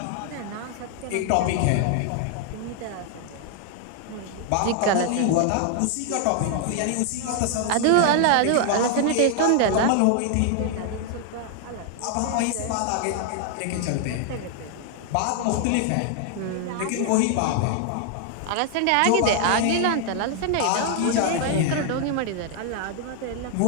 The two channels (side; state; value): both; different; correlation 0.00